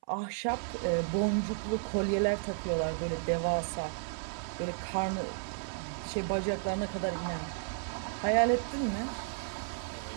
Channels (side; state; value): left; silent; 55 dB below the other